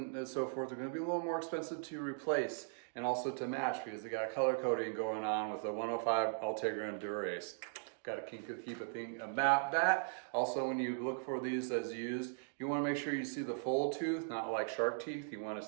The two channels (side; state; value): left; silent; digital silence